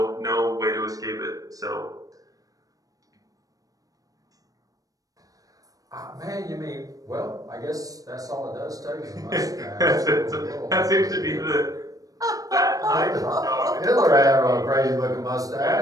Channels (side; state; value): left; late; 0.17 ms